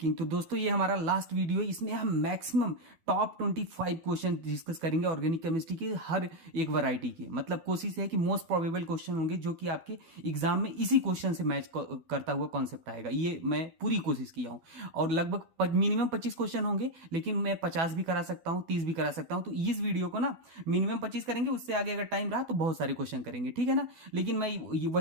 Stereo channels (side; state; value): left; late; 12 ms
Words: तो दोस्तों, ये हमारा लास्ट वीडियो है। इसमें हम मैक्सिमम टॉप 25 क्वेश्चन डिस्कस करेंगे ऑर्गेनिक केमिस्ट्री के हर एक वैरायटी के। मतलब कोशिश है कि मोस्ट प्रोबेबल क्वेश्चन होंगे जो कि आपके एग्जाम में इसी क्वेश्चन से मैच करता हुआ कॉन्सेप्ट आएगा। ये मैं पूरी कोशिश किया हूँ और लगभग मिनिमम 25 क्वेश्चन होंगे, लेकिन मैं 50 भी करा सकता हूँ, 30 भी करा सकता हूँ। तो इस वीडियो को ना मिनिमम 25 करेंगे, उससे आगे अगर टाइम रहा तो बहुत सारे क्वेश्चन करेंगे, ठीक है ना। लेकिन मैं